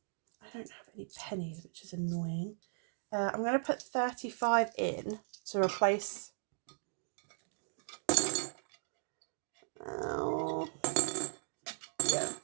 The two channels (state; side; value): silent; left; digital silence